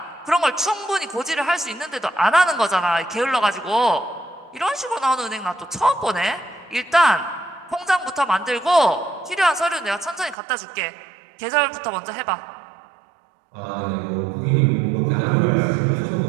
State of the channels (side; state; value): left; drops out; at 10.4 s